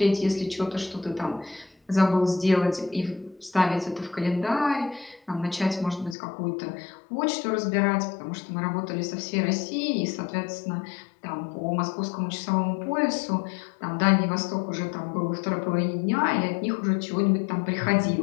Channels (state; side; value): drops out; right; at 6.2 s